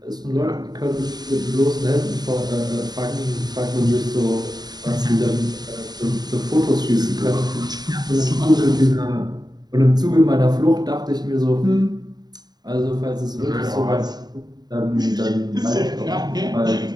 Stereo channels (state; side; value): late; left; 0.20 ms